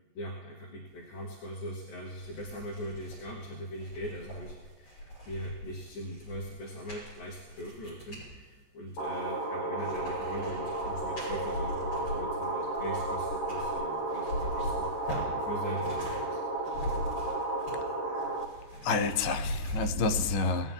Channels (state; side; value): late; right; 14 ms